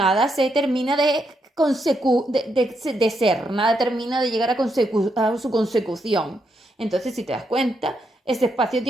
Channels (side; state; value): both; normal; correlation 0.80